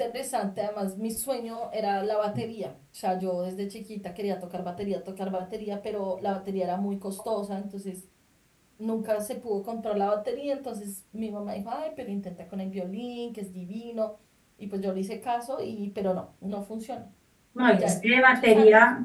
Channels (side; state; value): both; identical; correlation 1.00